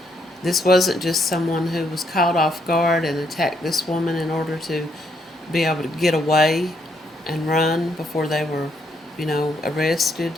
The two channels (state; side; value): normal; both; correlation 0.74